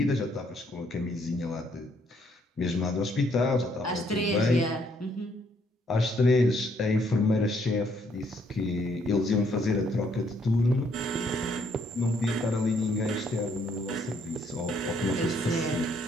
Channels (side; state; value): both; normal; correlation 0.69